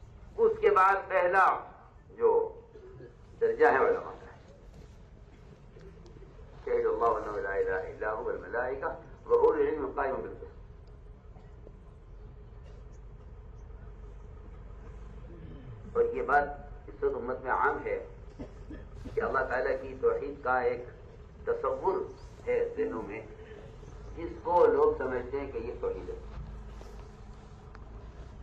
اس کے بعد پہلا جو درجہ ہے علماء کا ہے. شہد اللہ انہ لا الہ الا هو والملائکہ واولو العلم قائما بالقسط. اور یہ بات اس وقت امت میں عام ہے کہ اللہ تعالیٰ کی توحید کا ایک تصور ہے ذہنوں میں جس کو لوگ سمجھتے ہیں کہ یہ توحید ہے,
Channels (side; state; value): both; identical; correlation 1.00